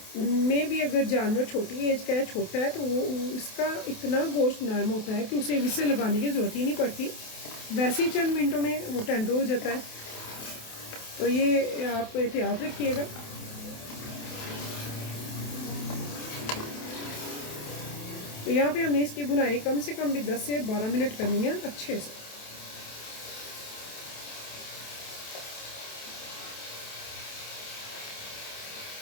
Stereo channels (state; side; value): late; right; 28 ms